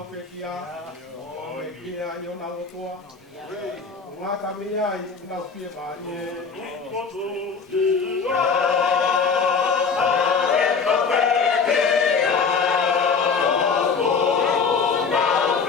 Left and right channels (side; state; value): right; quieter; 5.2 dB